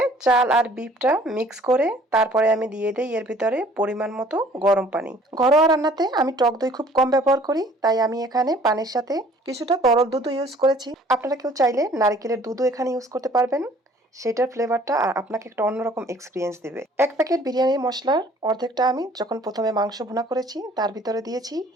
চাল আর বিফটা মিক্স করে তারপরে আমি দিয়ে দেই এর ভিতরে পরিমাণ মতো গরম পানি। ঘরোয়া রান্নাতে আমি টক দই খুব কম ব্যবহার করি, তাই আমি এখানে পানির সাথে কিছুটা তরল দুধও ইউজ করেছি। আপনারা কেউ চাইলে নারকেলের দুধও এখানে ইউজ করতে পারবেন। সেটার ফ্লেভারটা আর আপনাকে একটা অন্যরকম এক্সপিরিয়েন্স দেবে। এক প্যাকেট বিরিয়ানির মশলার অর্ধেকটা আমি যখন প্রথমে মাংস ভুনা করেছি তার ভিতরে দিয়েছি,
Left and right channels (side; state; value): both; normal; correlation 0.55